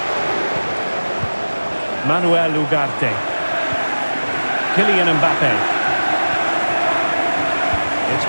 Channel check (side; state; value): both; inverted; correlation -1.00